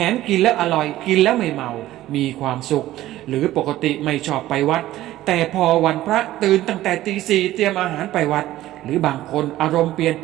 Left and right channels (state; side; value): quieter; left; 14.9 dB